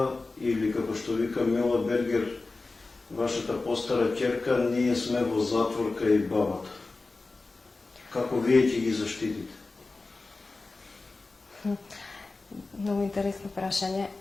или, како што вика Мила Бергер, вашата постара ќерка, ние сме во затворка и бабата. Како вие ќе ги заштитите? Многу интересно прашање.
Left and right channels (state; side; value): quieter; right; 3.5 dB